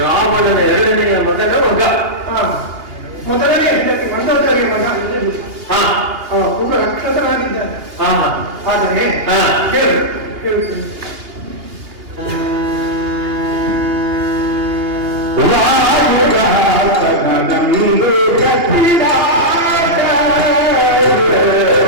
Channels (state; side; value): late; left; 2.8 ms